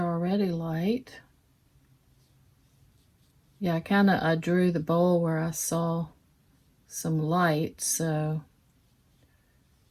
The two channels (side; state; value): both; identical; correlation 1.00